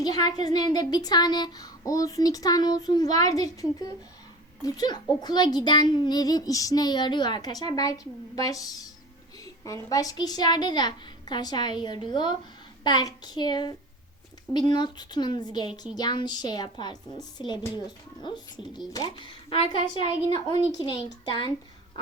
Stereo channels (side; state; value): both; normal; correlation 0.37